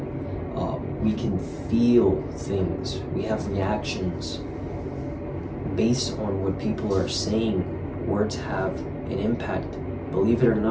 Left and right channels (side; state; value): both; identical; correlation 1.00